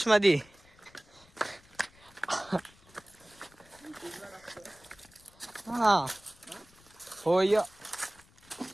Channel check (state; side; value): noise; left; rumble, 27 dB below the sound